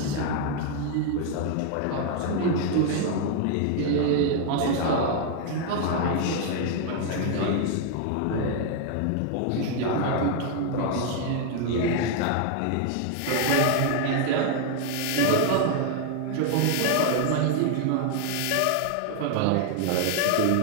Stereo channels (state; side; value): different; both; correlation 0.00